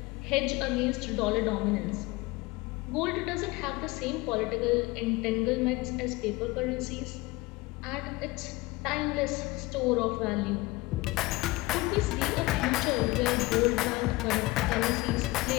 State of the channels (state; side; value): quieter; right; 21.4 dB